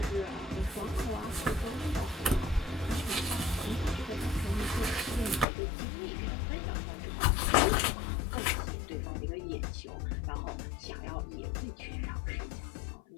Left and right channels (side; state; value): right; drops out; at 5.5 s